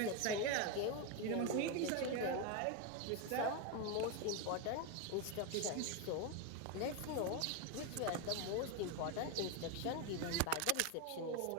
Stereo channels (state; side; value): different; both; correlation 0.02